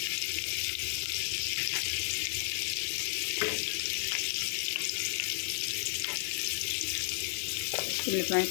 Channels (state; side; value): silent; right; digital silence